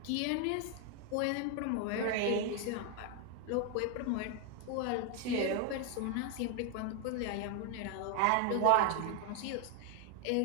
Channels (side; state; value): both; different; correlation 0.01